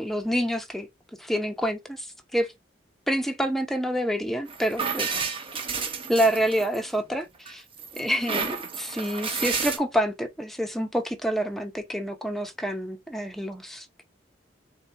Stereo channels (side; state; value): both; normal; correlation 0.70